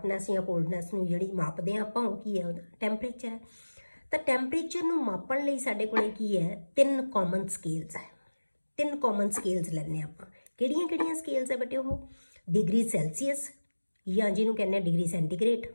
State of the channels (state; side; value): inverted; both; correlation -1.00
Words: ਜਾਂ ਕੋਲਡਨੈਸ ਨੂੰ ਜਿਹੜੀ ਮਾਪਦੇ ਹਾਂ ਆਪਾਂ, ਉਹ ਕੀ ਹੈ, ਉਹਦਾ ਟੈਂਪਰੇਚਰ ਹੈ। ਤਾਂ ਟੈਂਪਰੇਚਰ ਨੂੰ ਮਾਪਣ ਲਈ ਸਾਡੇ ਕੋਲੇ ਕੀ ਹੈ, 3 ਕਾਮਨ ਸਕੇਲਸ ਹੈ। 3 ਕਾਮਨ ਸਕੇਲਸ ਲੈਂਦੇ ਆਪਾਂ। ਕਿਹੜੀਆਂ ਸਕੇਲਸ ਹੈ ਬੇਟੇ, ਉਹ ਡਿਗਰੀ ਸੈਲਸੀਅਸ ਜਾਂ ਜਿਹਨੂੰ ਕਹਿੰਦੇ ਆ ਡਿਗਰੀ ਸੈਂਟੀਗ੍ਰੇਡ,